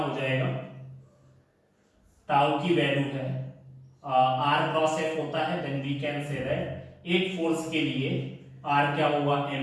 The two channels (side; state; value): both; identical; correlation 1.00